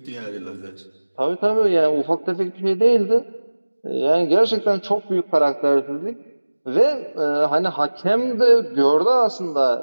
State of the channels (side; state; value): both; inverted; correlation -1.00